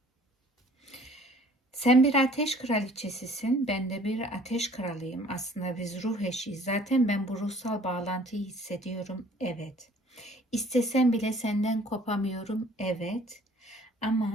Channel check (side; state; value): both; normal; correlation 0.54